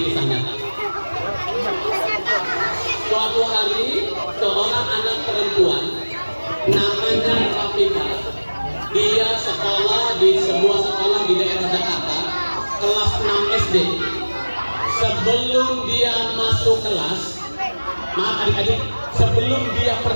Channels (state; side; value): inverted; both; correlation -1.00